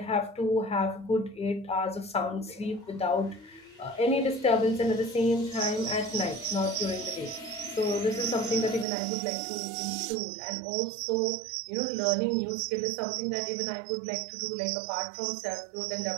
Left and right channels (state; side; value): drops out; left; at 8.8 s